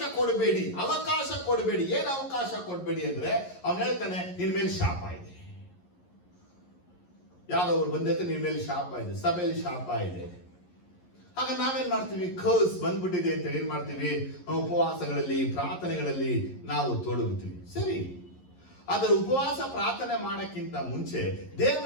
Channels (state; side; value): late; right; 11 ms